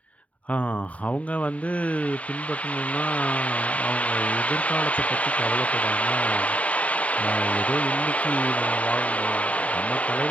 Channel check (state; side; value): late; right; 0.068 ms